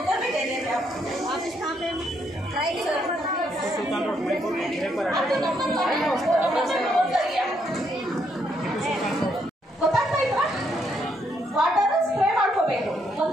भी दे देंगे आप. ऑफिस कहाँ पे ಗೊತ್ತಾಗ್ತಾ ಇದ್ರಾ? ವಾಟರ್ ಸ್ಪ್ರೇ ಮಾಡ್ಕೋಬೇಕು.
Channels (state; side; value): normal; both; correlation 0.74